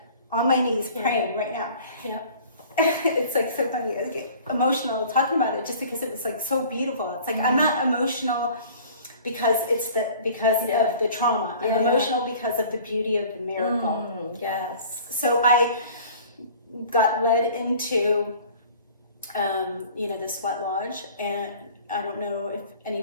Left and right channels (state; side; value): inverted; both; correlation -0.47